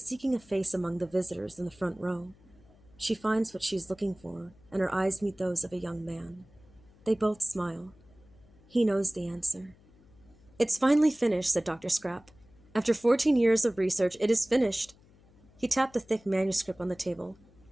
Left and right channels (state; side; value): noise; left; hum, 27 dB below the sound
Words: seeking a face among the visitors in the front row. She finds what she is looking for, and her eyes meet those of a young man. They both smile. He knows the answer. "It's finally finished," said Dr. Scrap. "After 14 years of research, it is finished." He tapped the thick manuscript on the table.